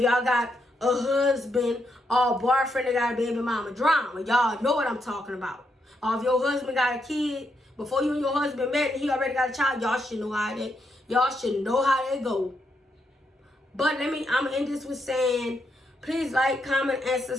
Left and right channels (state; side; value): normal; both; correlation 0.80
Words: got a husband or a boyfriend that got a baby mama drama, y'all know what I'm talking about. Or if your husband got a kid, before you and your husband met and he already got a child, y'all should know how that go. But I'm gonna end this with saying, please like, comment, and